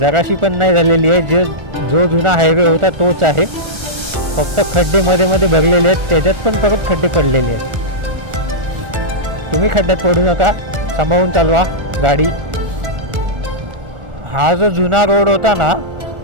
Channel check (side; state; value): left; late; 1.4 ms